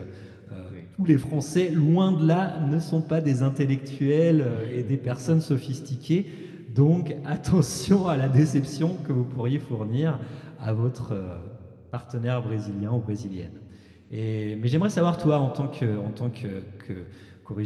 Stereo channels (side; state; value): both; identical; correlation 1.00